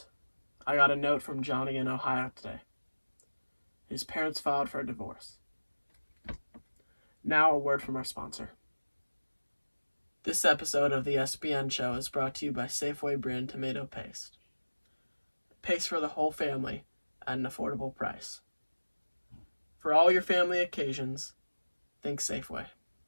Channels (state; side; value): inverted; both; correlation -1.00